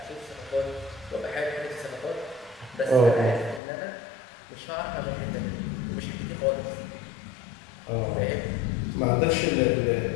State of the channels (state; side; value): drops out; right; at 3.6 s